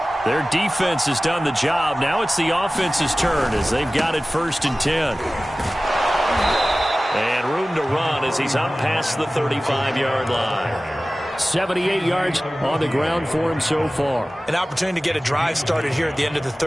Their defense has done the job. Now it's the offense's turn as they've got it first and 10. And room to run as he's up past the 35-yard line. 78 yards on the ground for him so far. An opportunity to get a drive started here at the end of the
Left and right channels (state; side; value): normal; both; correlation 0.97